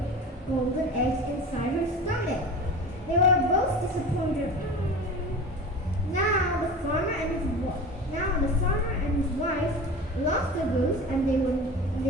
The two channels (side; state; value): both; normal; correlation 0.33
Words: golden eggs inside her stomach. They were both disappointed. Now the farmer and his wife lost the goose and they